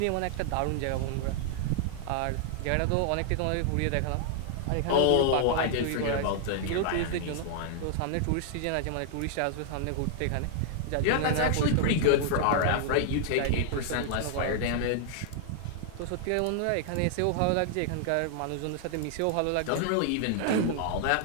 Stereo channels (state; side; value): different; both; correlation 0.00